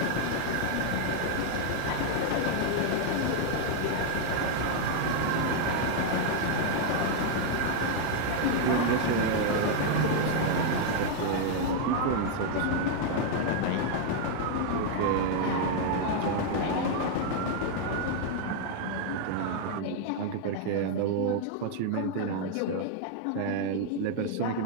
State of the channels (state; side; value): different; both; correlation 0.00